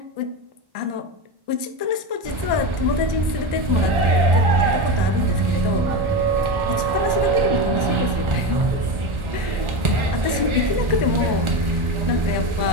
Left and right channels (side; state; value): left; late; 1.4 ms